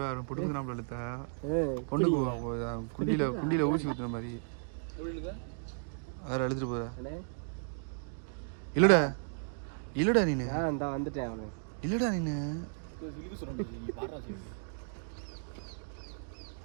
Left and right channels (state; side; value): silent; left; digital silence